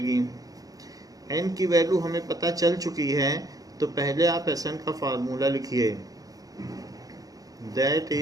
n की वैल्यू हमें पता चल चुकी है, तो पहले आप Sn का फार्मूला लिखिए। दैट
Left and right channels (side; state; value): left; late; 0.18 ms